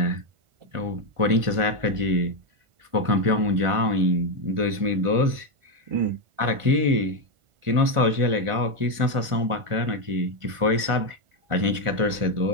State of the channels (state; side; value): late; left; 1.5 ms